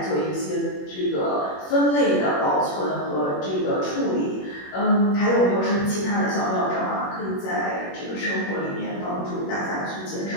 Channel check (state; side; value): late; right; 21 ms